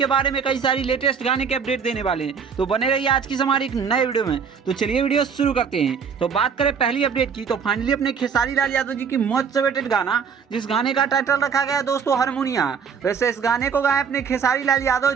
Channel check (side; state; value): left; quieter; 6.5 dB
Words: बारे में कई सारी लेटेस्ट गाने के अपडेट देने वाले हैं। तो बने रहिए आज की हमारी एक नए वीडियो में। तो चलिए वीडियो शुरू करते हैं। तो बात करें पहली अपडेट की, तो फाइनली अपने खेसारी लाल यादव जी की मोस्ट अवेटेड गाना, जिस गाने का टाइटल रखा गया है दोस्तों हारमोनिया। वैसे इस गाने को गाए अपने खेसारी लाल यादव